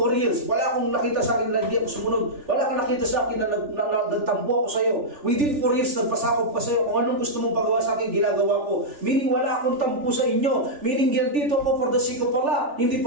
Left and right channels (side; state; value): left; late; 3.4 ms